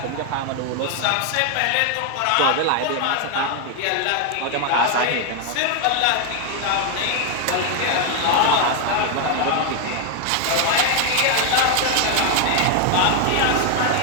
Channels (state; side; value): different; both; correlation 0.00